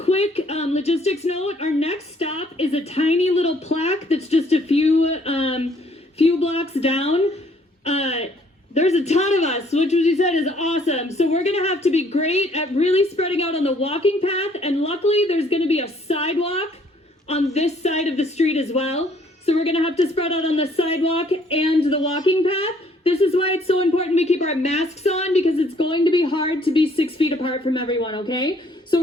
logistics note, our next stop is a tiny little plaque that's just a few blocks down. There's a ton of us, which you said is awesome. So we're gonna have to be great at really spreading out on the walking path, and luckily there's gonna be a sidewalk on this side of the street as well. So we're gonna have to spread out on the sidewalk and the walking path. This is why it's so important we keep our masks on, because it's going to be hard to be 6 feet apart from everyone, okay? So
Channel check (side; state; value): both; normal; correlation 0.63